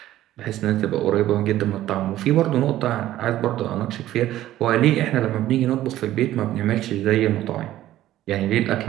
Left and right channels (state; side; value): quieter; left; 13.9 dB